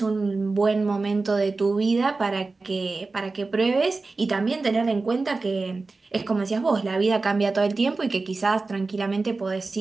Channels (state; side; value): quieter; left; 3.7 dB